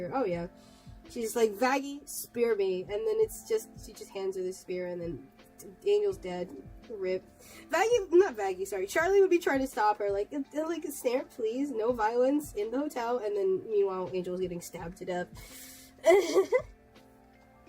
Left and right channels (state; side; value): identical; both; correlation 1.00